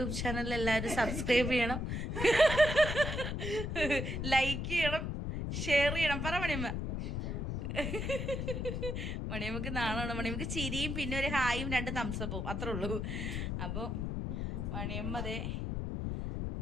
ചാനൽ എല്ലാവരും സബ്സ്ക്രൈബ് ചെയ്യണം, ലൈക്ക് ചെയ്യണം, ഷെയർ ചെയ്യണം. പറ മണിയമ്മ. മണിയമ്മക്ക് നാണമാണ്. മണിയമ്മക്ക് ചിരിയും പിന്നെ ഒരു ഹായും 2 തംസപ്പും അത്രേ ഉള്ളൂ. അപ്പോൾ മണിയമ്മ അതേ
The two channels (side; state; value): left; noise; rumble, 2 dB below the sound